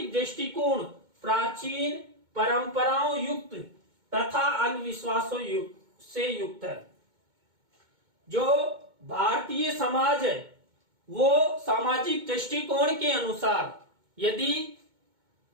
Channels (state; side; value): late; left; 2.2 ms